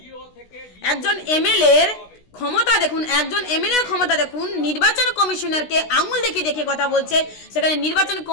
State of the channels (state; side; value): late; right; 16 ms